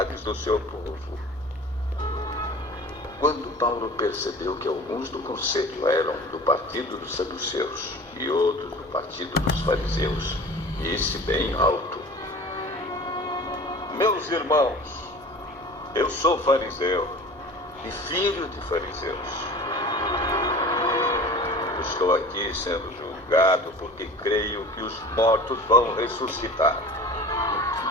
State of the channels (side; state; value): both; normal; correlation 0.40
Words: do seu povo. Quando Paulo percebeu que alguns do conselho eram do partido dos saduceus e outros do partido dos fariseus, disse bem alto: Meus irmãos, eu sou fariseu e filho de fariseus. Estou aqui sendo julgado porque creio que os mortos vão ressuscitar.